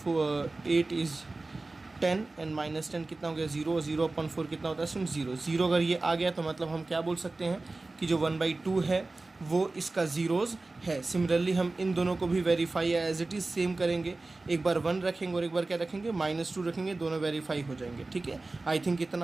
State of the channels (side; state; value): left; quieter; 3.3 dB